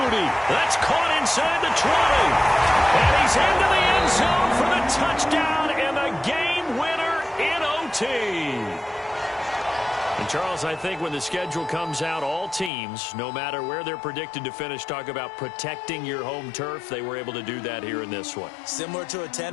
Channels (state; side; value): drops out; right; at 12.7 s